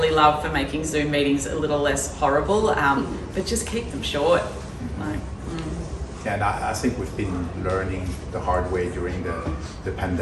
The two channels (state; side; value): identical; both; correlation 1.00